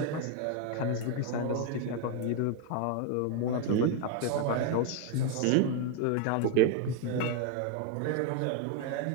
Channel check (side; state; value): both; different; correlation 0.01